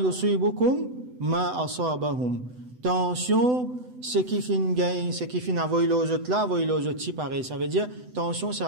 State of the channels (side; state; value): left; late; 8.0 ms